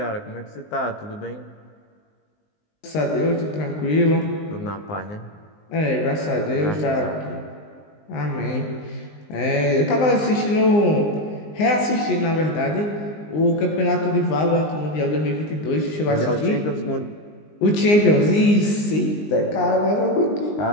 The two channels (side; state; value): right; late; 19 ms